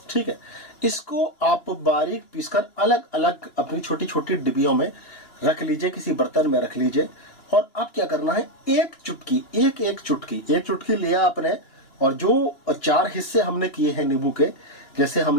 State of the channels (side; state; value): right; late; 2.9 ms